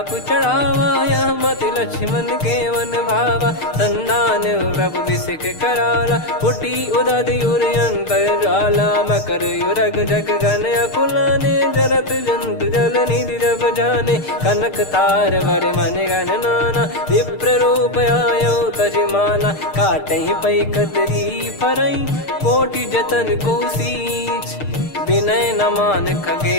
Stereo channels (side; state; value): right; late; 6.6 ms